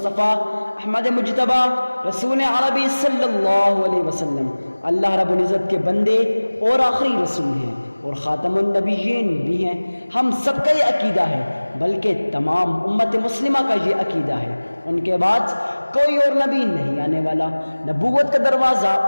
احمد مجتبی رسول عربی صلی اللہ علیہ وسلم اللہ رب العزت کے بندے اور آخری رسول ہیں اور خاتم النبیین بھی ہیں۔ ہم سب کا یہ عقیدہ ہے، بلکہ تمام امت مسلمہ کا یہ عقیدہ ہے، ان کے بعد کوئی اور نبی نہیں آنے والا، نبوت کا دروازہ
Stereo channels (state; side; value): inverted; both; correlation -1.00